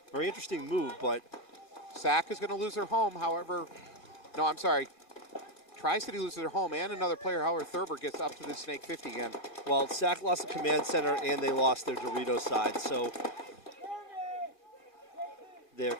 Very interesting move, but Sack is going to lose their home, however. No, I'm sorry. TriCity loses their home and another player, however, Thurber gets up to the snake 50 again. well, Sack lost the command center and they lost their Dorito side, so they're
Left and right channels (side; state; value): right; late; 1.8 ms